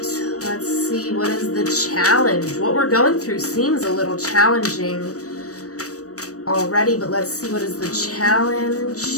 let's see, what is the challenge? What we're going through seems a little challenging already, but let's see, what is the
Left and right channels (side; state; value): right; late; 0.66 ms